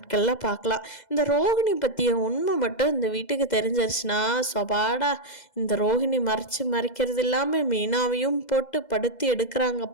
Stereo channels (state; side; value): late; right; 2.0 ms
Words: பார்க்கலாம். இந்த ரோஹிணி பற்றிய உண்மை மட்டும் இந்த வீட்டுக்கு தெரிஞ்சிருச்சுன்னா சொபாடா, இந்த ரோஹிணி மறைக்கிறது இல்லாமல் மீனாவையும் போட்டு படுத்தி